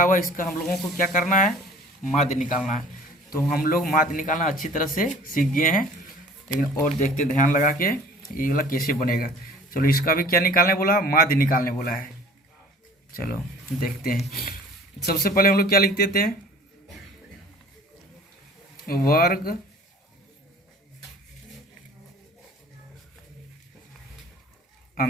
हुआ है इसका हम लोगों को क्या करना है, माध्य निकालना है। तो हम लोग माध्य निकालना अच्छी तरह से सीख गए हैं, लेकिन और देखते ध्यान लगा के ये वाला कैसे बनेगा। चलो इसका भी क्या निकालने बोला, माध्य निकालने बोला है। चलो देखते हैं। सबसे पहले हम लोग क्या लिखते थे, वर्ग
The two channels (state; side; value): normal; both; correlation 0.48